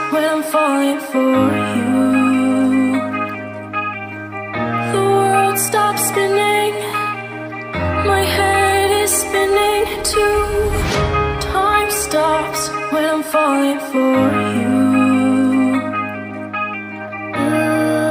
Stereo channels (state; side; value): identical; both; correlation 1.00